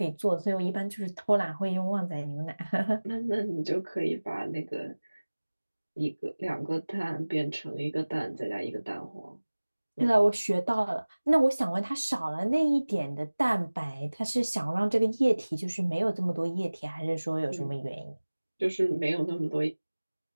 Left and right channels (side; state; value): both; inverted; correlation -1.00